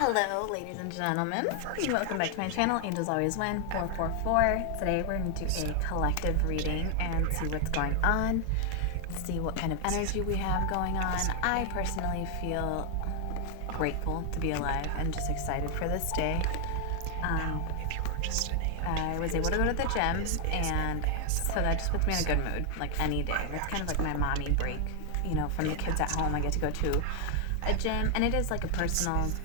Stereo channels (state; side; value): different; both; correlation 0.00